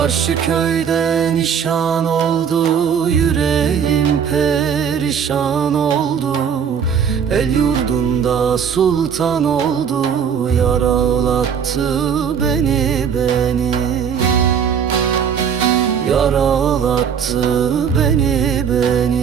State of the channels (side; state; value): left; quieter; 7.4 dB